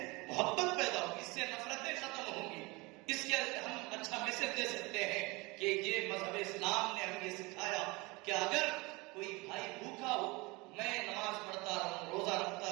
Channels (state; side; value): quieter; left; 25.0 dB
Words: محبت پیدا ہوگی، اس سے نفرتیں ختم ہوں گی. اس کے ہم اچھا میسج دے سکتے ہیں کہ یہ مذہب اسلام نے ہمیں یہ سکھایا کہ اگر کوئی بھائی بھوکا ہو، میں نماز پڑھتا رہوں، روزہ